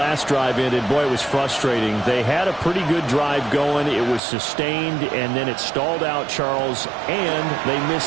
drive ended, boy, it was frustrating. They had a pretty good drive going. It was sustained, and then it stalled out, Charles, and they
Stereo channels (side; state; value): left; drops out; at 4.2 s